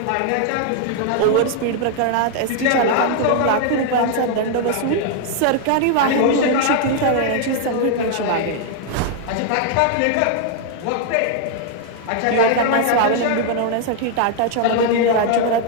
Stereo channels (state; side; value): different; both; correlation 0.00